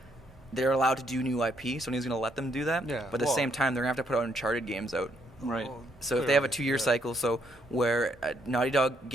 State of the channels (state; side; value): normal; both; correlation 0.72